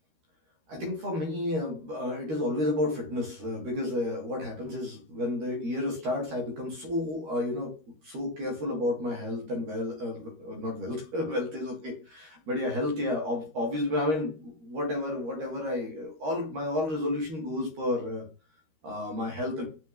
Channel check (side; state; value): left; late; 13 ms